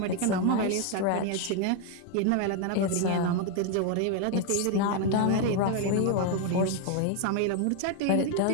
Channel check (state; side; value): different; both; correlation 0.01